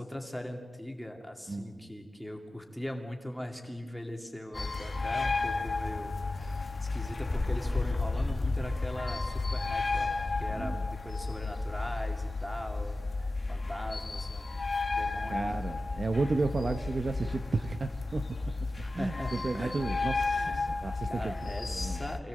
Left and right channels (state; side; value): normal; both; correlation 0.94